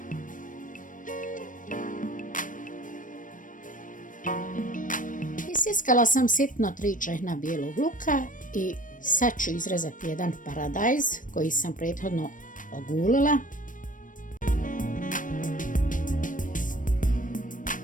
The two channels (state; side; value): late; right; 0.38 ms